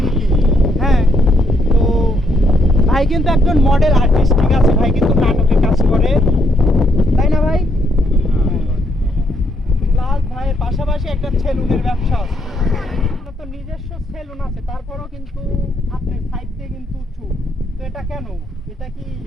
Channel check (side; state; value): both; normal; correlation 0.73